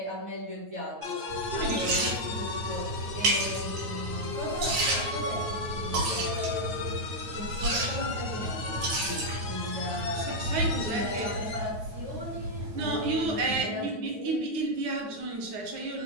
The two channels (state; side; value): late; left; 9.3 ms